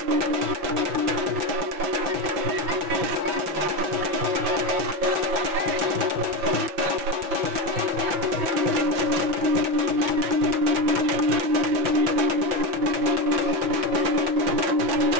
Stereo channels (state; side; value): late; left; 5.6 ms